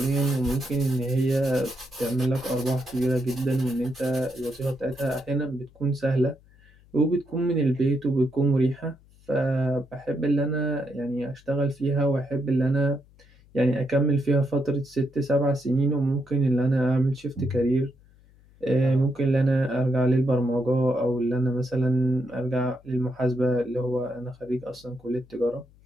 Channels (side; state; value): left; noise; hum, 28 dB below the sound